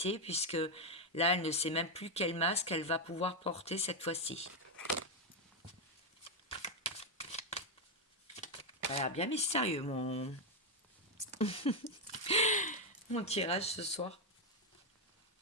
puisque là, elle ne sait même plus quel masque elle va pouvoir porter cette fois-ci. Ça a l'air bien mystérieux mon tirage ce soir.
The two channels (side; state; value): both; normal; correlation 0.03